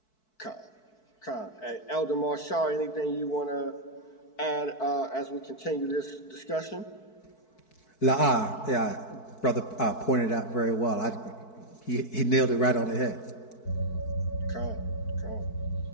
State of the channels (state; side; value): late; right; 4.6 ms